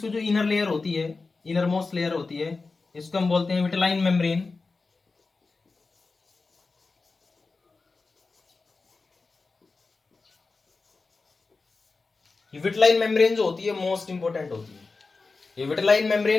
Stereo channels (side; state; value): right; quieter; 4.0 dB